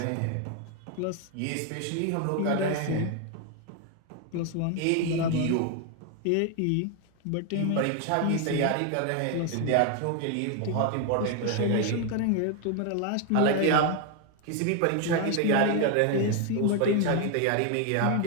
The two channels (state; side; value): different; both; correlation 0.01